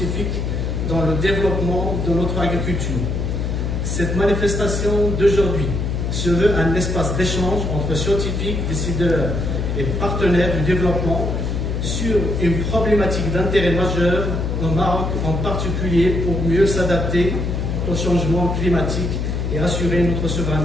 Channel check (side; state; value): left; noise; hum, 1 dB below the sound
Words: dans le développement de notre agriculture. Cette manifestation d'aujourd'hui se veut un espace d'échange entre scientifiques, décideurs et partenaires du développement sur une problématique d'intérêt majeur au Maroc en particulier pour mieux s'adapter au changement climatique et assurer notre